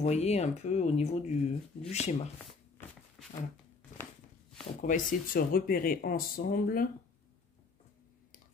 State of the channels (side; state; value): right; quieter; 4.3 dB